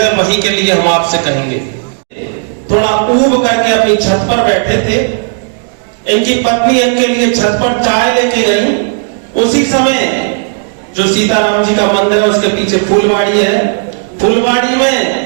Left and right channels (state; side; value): silent; left; 63 dB below the other